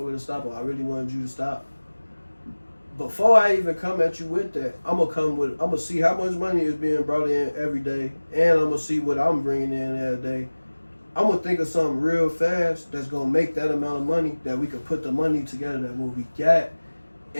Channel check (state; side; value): inverted; both; correlation -1.00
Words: to stop, or I really wanted you to stop. Before I even come at you with that, I'm gonna see how much money is being brought in every day, and I'm gonna see what I'm bringing in every day. I'm gonna think of something real fast that's gonna make that amount of money that we could put the money together that what we got,